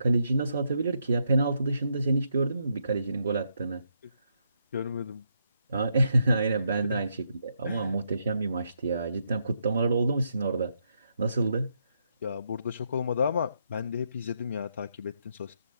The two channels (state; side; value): inverted; both; correlation -0.78